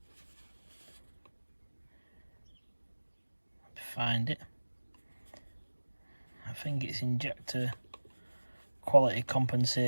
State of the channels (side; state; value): both; inverted; correlation -1.00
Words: find it, I think it's injector quality